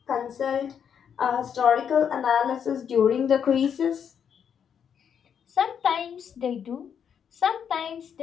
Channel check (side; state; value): right; quieter; 7.9 dB